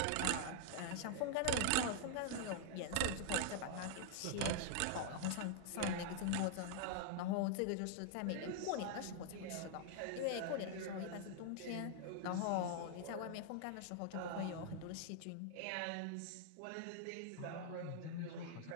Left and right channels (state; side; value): different; both; correlation 0.00